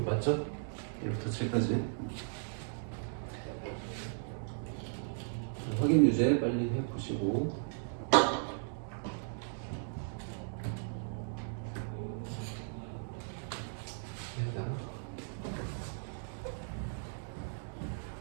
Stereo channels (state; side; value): silent; left; digital silence